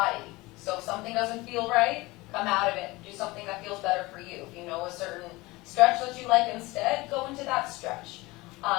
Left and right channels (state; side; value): quieter; right; 21.6 dB